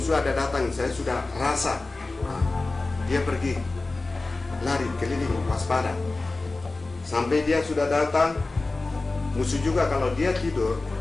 ada datang, saya sudah rasa. Dia pergi lari keliling waspada sampai dia sudah datang. Musuh juga kalau dia tidur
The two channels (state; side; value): quieter; right; 3.3 dB